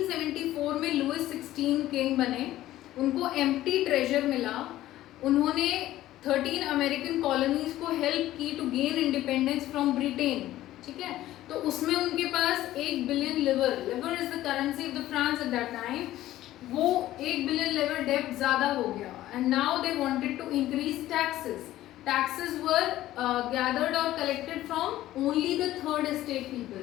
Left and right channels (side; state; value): right; quieter; 14.6 dB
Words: में लुइस 16 किंग बने, उनको एम्प्टी ट्रेजर मिला, उन्होंने 13 अमेरिकन कॉलोनीज को हेल्प की to gain independence from Britain. ठीक है, तो उसमें उनके पास 1 billion livre is the currency of the France at that time. वो 1 बिलियन लिवर डेब्ट ज्यादा हो गया and now they wanted to increase taxes. Taxes were gathered or collected from only the third estate people.